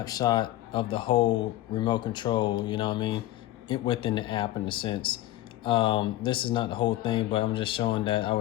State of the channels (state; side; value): quieter; right; 15.2 dB